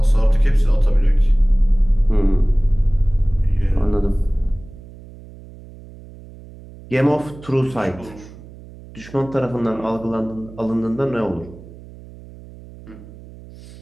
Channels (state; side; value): noise; right; hum, 19 dB below the sound